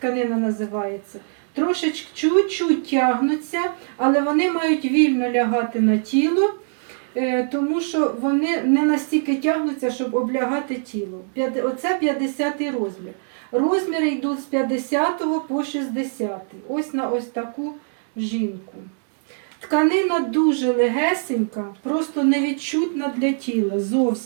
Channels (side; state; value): left; silent; digital silence